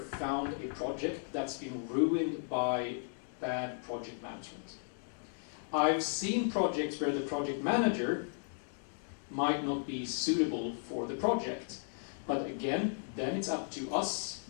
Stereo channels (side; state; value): right; silent; digital silence